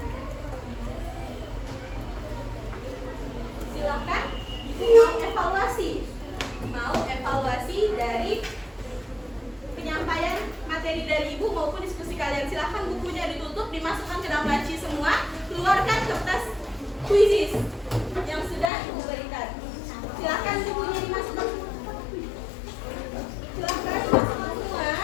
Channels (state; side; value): drops out; right; at 18.7 s